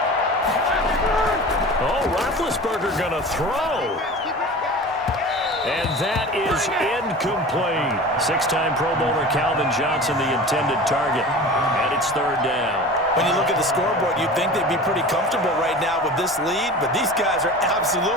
Oh, Roethlisberger going to throw. And that is incomplete. 6-time Pro Bowler Calvin Johnson, the intended target. And it's 3rd down. When you look at the scoreboard, you'd think they'd be pretty comfortable right now with this lead, but these guys are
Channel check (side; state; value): both; normal; correlation 0.36